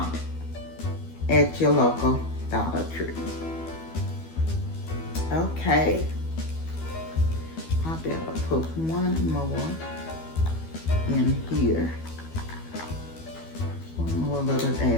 at your local Dollar Tree. Okay, I better put 1 more in here. 1 more little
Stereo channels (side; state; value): right; late; 12 ms